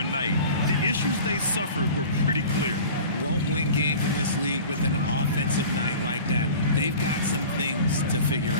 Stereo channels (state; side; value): inverted; both; correlation -0.40